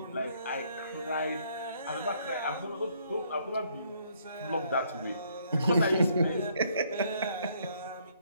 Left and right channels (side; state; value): both; inverted; correlation -0.67